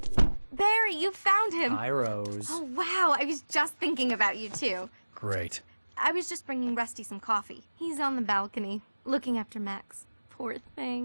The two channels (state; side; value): inverted; both; correlation -1.00